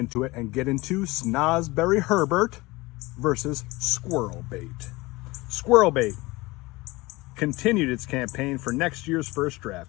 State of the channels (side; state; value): right; quieter; 21.9 dB